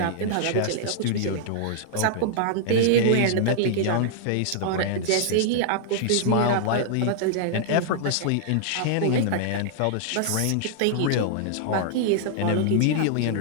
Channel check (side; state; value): both; different; correlation -0.01